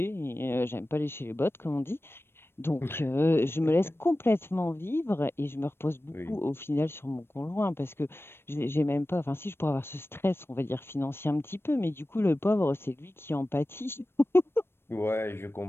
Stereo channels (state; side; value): late; right; 0.12 ms